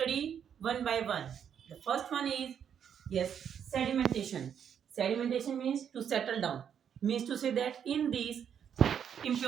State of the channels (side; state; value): left; quieter; 8.4 dB